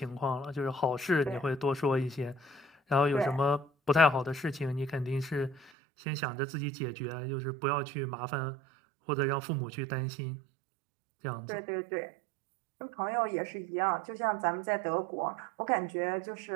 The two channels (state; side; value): drops out; left; at 5.7 s